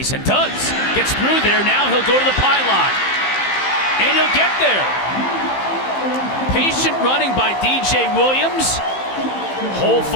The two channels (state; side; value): late; right; 15 ms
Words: and does. Gets through there. Now he'll go to the pylon. And he'll get there. Patient running by DJ Williams. Hole